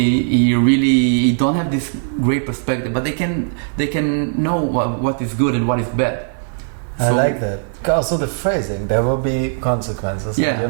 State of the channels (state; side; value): silent; left; digital silence